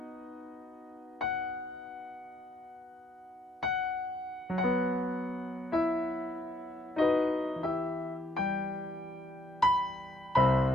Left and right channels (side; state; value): both; normal; correlation 0.69